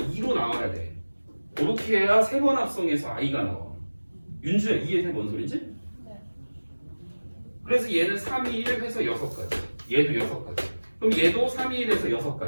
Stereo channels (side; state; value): both; inverted; correlation -1.00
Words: 나와야 돼. 그렇게 해야 세 번 합성해서 i가 나와. 윤주야 이해돼 뭔 소리지? 네. 그래서 얘는 3, 2, 1 해서 6가지. 얘도 6가지. 그럼 얘도 3, 2, 1 해서